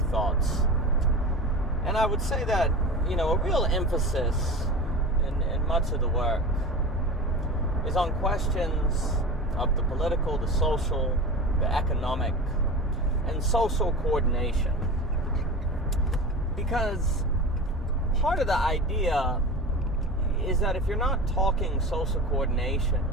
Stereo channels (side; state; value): both; normal; correlation 0.31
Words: And I would say that, a real emphasis in much of the work is on questions of the political, the social, the economic, and social coordination. Because part of the idea is that if you're not talking social coordination,